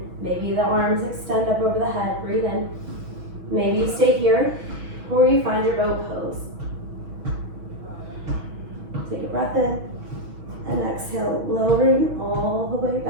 Maybe the arms extend up over the head, breathe in. Maybe you stay here, or you find your boat pose. Take a breath in, and exhale, lowering all the way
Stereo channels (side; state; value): left; late; 6.2 ms